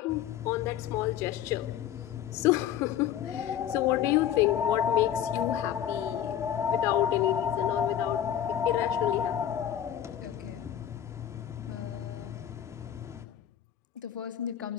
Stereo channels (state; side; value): quieter; right; 10.4 dB